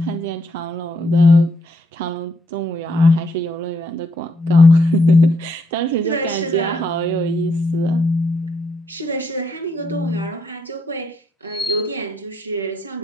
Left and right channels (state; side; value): normal; both; correlation 0.75